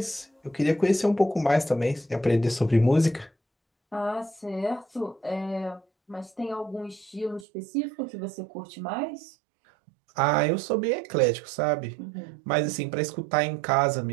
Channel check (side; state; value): left; drops out; at 7.5 s